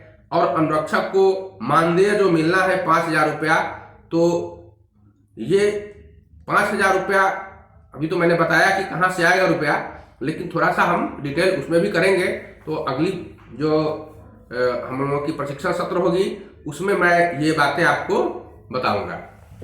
और अनुरक्षक को मानदेय जो मिलना है 5,000 रुपया, तो ये 5,000 रुपया अभी तो मैंने बताया कि कहाँ से आएगा रुपया, लेकिन थोड़ा सा हम डिटेल उसमें भी करेंगे। तो अगली जो हम लोगों की प्रशिक्षण सत्र होगी उसमें मैं ये बातें आपको बताऊंगा।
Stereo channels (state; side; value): identical; both; correlation 1.00